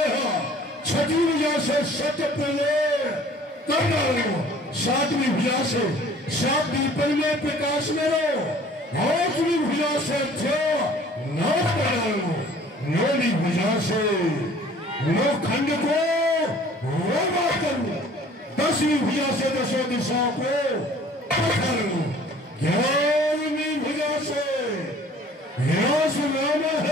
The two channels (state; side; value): normal; both; correlation 0.51